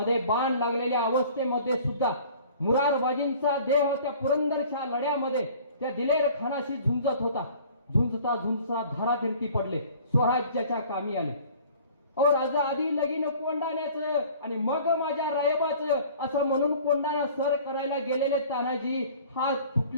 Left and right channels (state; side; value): inverted; both; correlation -0.49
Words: बाण लागलेल्या अवस्थेमध्ये सुद्धा मुरारबाजींचा देह त्या पुरंदरच्या लढ्यामध्ये त्या दिलेर खानाशी झुंजत होता. झुंजता झुंजता धारातीर्थी पडले, स्वराज्याच्या कामी आले. राजा आधी लगीन कोंडाण्याचं आणि मग माझ्या रायबाचं असं म्हणून कोंडाणा सर करायला गेलेले तानाजी हात